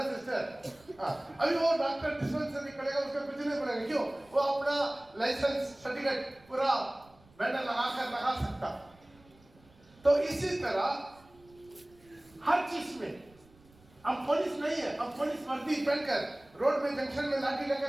सिस्टर? हाँ, अभी वो डॉक्टर डिस्पेंसरी करेगा, उसका कुछ नहीं पड़ेगा। क्यों? वो अपना लाइसेंस सर्टिफिकेट पूरा बैनर लगा सकता। तो इसी तरह हर चीज में अब पुलिस नहीं है, अब पुलिस वर्दी पहनकर रोड में जंक्शन में लाठी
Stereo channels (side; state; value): right; noise; rumble, 28 dB below the sound